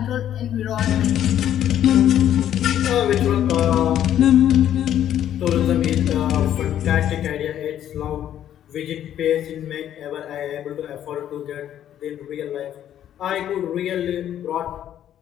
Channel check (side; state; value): right; quieter; 10.9 dB